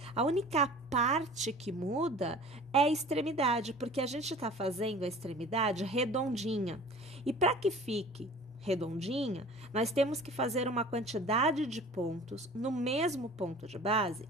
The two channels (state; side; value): normal; both; correlation 0.43